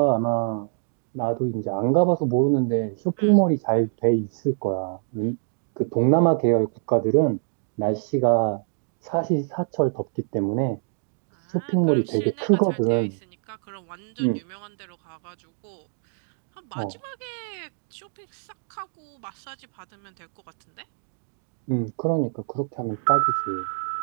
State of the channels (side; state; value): left; silent; digital silence